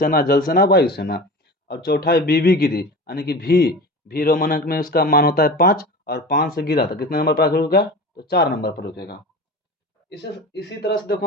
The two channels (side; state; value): both; normal; correlation 0.33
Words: जल सेना, वायु सेना। और चौथा है बीवी गिरी, यानी कि भी रोमन अंक में उसका मान होता है 5, और 5 से गिरा था कितने नंबर पर रुकेगा? तो 4 नंबर पर रुकेगा। इसी तरह से देखो